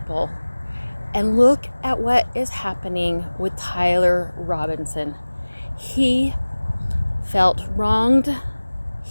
And look at what is happening with Tyler Robinson. He felt wronged.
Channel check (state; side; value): inverted; both; correlation -1.00